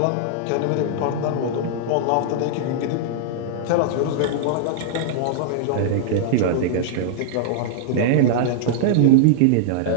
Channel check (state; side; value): different; both; correlation -0.01